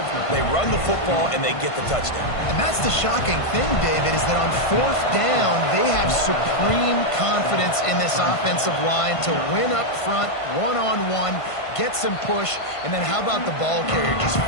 They run the football, and they get the touchdown. And that's the shocking thing, David, is that on 4th down, they have supreme confidence in this offensive line to win up front, one-on-one, get some push, and then how about the ball carrier just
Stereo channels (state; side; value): late; right; 1.5 ms